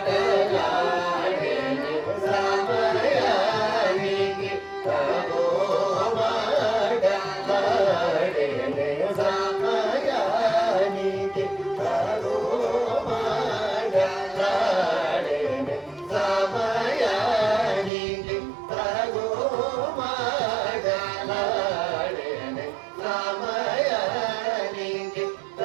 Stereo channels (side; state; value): left; drops out; at 17.9 s